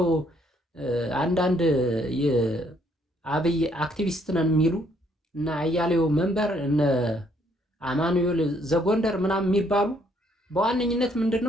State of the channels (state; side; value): normal; both; correlation 0.68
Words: አንዳንድ የአብይ አክቲቪስት ነን የሚሉ እና አያሌው መንበር እነ አማኑኤል ዘጎንደር ምናምን የሚባሉ በዋነኝነት